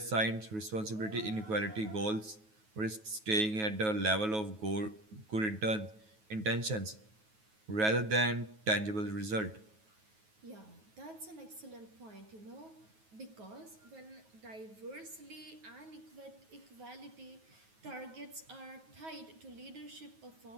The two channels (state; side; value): late; left; 9.3 ms